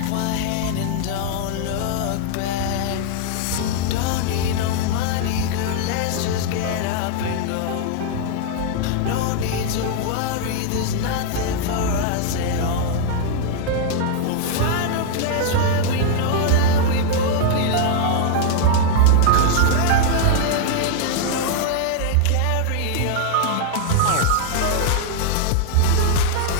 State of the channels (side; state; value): both; different; correlation 0.00